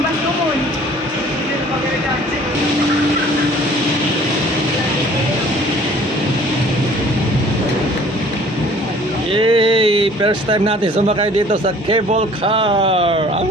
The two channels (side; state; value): both; normal; correlation 0.52